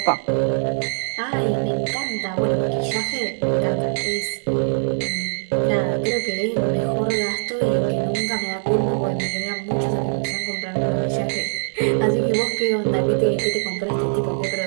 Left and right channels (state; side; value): silent; left; digital silence